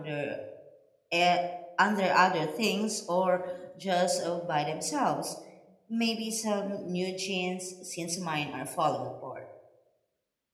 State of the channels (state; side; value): identical; both; correlation 1.00